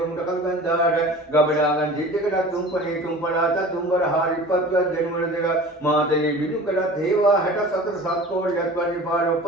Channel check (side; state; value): both; normal; correlation 0.40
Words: කල්ගන්දාට ගබඩාගන් ජිද්දකට තුම්පනේ තුම්පලාට තුම්බර හාරිපත්වත් දෙනුවර දෙක මාතේ බිනුකඩත් හේවා 64 සත්කෝඩයක් වගේ පාර